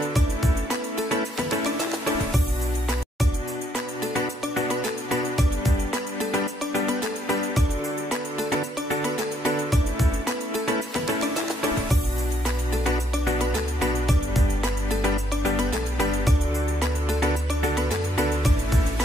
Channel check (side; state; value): both; normal; correlation 0.72